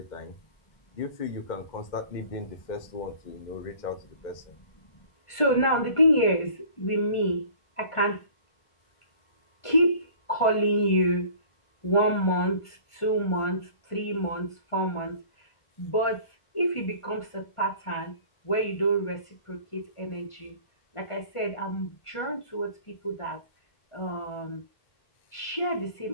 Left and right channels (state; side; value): late; right; 1.5 ms